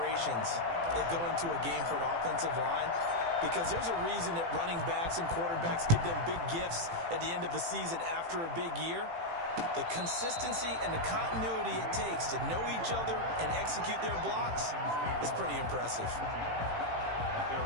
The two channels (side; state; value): left; late; 18 ms